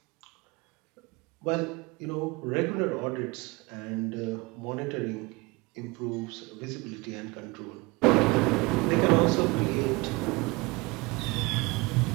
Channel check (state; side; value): quieter; left; 24.6 dB